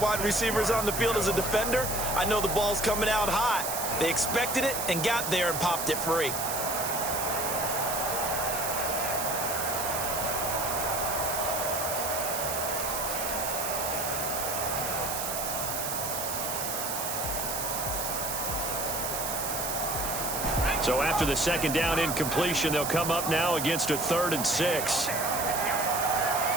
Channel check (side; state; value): right; noise; hiss, 3 dB below the sound